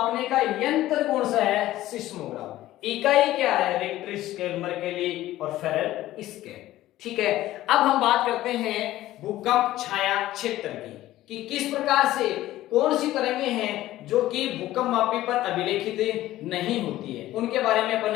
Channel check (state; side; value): quieter; right; 15.1 dB